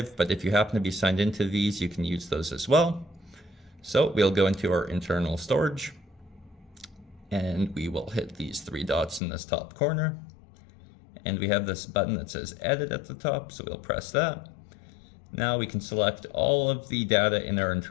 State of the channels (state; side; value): drops out; right; at 9.2 s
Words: but if you happen to be signed into these, you can use those as well. So we'll go into our internal storage, and we will hit these three dots in this top corner. And we have this button that says Edit at the top, so we'll press that. Now we can select all of the data in our